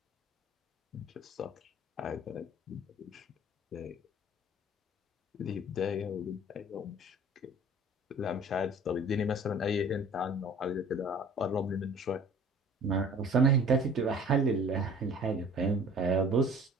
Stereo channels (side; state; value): both; normal; correlation 0.48